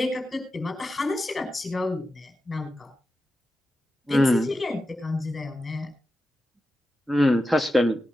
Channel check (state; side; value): normal; both; correlation 0.92